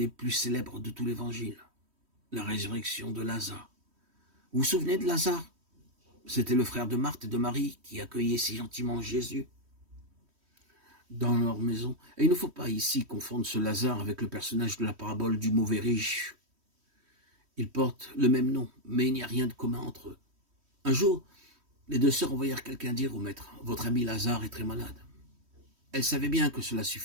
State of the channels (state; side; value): late; left; 3.1 ms